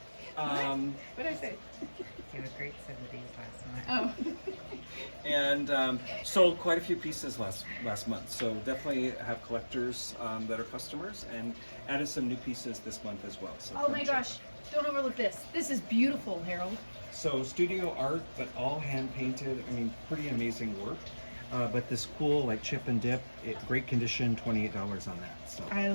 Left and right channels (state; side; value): inverted; both; correlation -1.00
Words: What did I say? You had a great set of these last month. Oh. And sold quite a few pieces last month. So definitely have collectors that are customers, and added some new pieces this month as well. So Oh come my check. gosh. Don't overlook this. This is beautiful, Harold. So studio art, but all hand painted. I mean, pretty amazing work. But this cool like chip and dip, great condition, $28 on that. So I